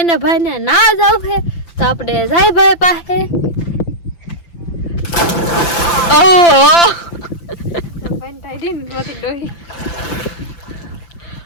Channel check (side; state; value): right; late; 5.9 ms